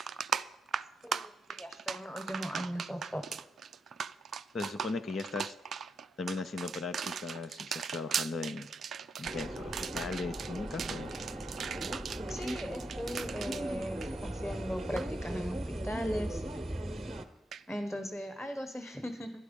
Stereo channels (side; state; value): both; normal; correlation 0.83